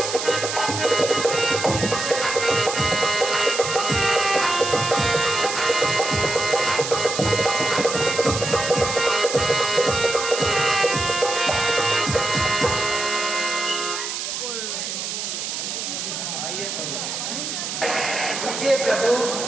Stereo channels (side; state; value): right; noise; hiss, 4 dB below the sound